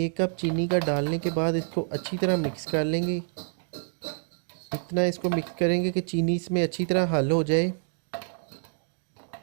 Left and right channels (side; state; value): left; silent; digital silence